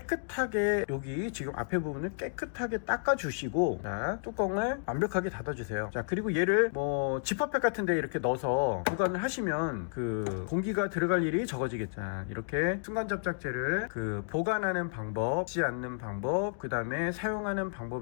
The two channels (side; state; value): right; silent; digital silence